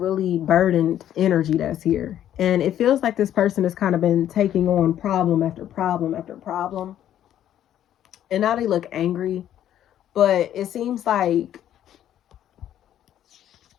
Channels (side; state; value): right; quieter; 11.2 dB